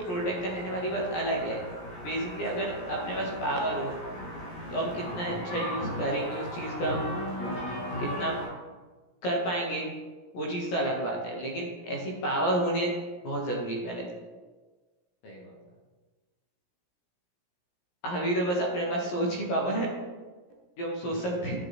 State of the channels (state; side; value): late; right; 17 ms